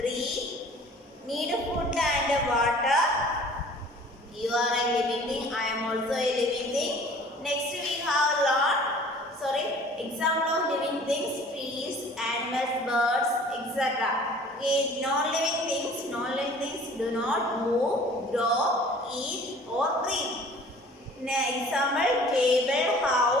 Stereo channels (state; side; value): normal; both; correlation 0.49